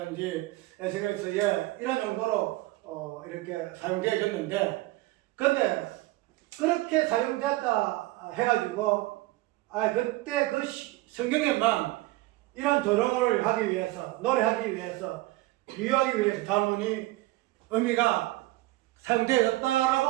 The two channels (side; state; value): left; quieter; 19.2 dB